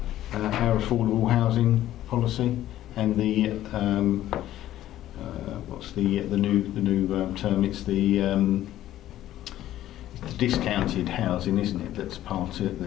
our affordable housing policy. and the what's the new term? It's the discounted housing, isn't it? That's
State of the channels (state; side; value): quieter; right; 13.3 dB